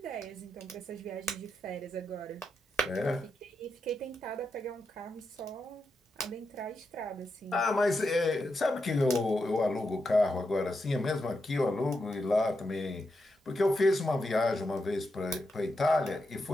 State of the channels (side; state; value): both; normal; correlation 0.85